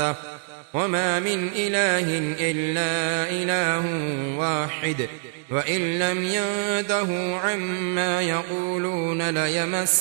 وما من إله إلا إله واحد وإن لم ينتهوا عما يقولون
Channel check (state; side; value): silent; left; digital silence